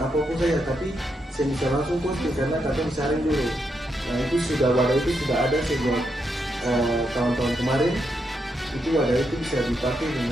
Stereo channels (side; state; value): both; normal; correlation 0.81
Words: saja, tapi saya bisa langsung posting karena kita disaring dulu. Nah itu wadah itu sudah ada sejak tahun-tahun kemarin. Itu wadah itu bisa dipakai